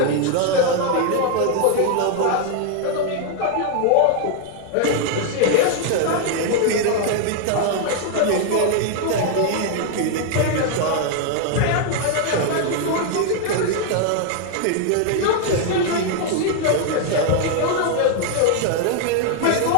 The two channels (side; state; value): both; different; correlation 0.00